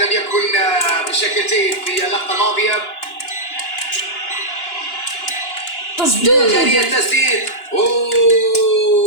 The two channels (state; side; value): late; right; 2.9 ms